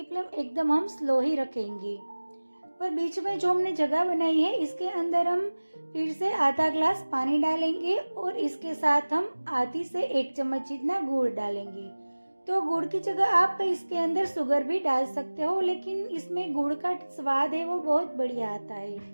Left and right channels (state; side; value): inverted; both; correlation -1.00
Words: फ्लेम एकदम हम स्लो ही रखेंगे। और बीच में जो हमने जगह बनाई है इसके अंदर हम फिर से आधा ग्लास पानी डालेंगे और इसके साथ हम आधी से 1 चम्मच जितना गुड़ डालेंगे। तो गुड़ की जगह आप इसके अंदर शुगर भी डाल सकते हो, लेकिन इसमें गुड़ का स्वाद है वो बहुत बढ़िया आता है।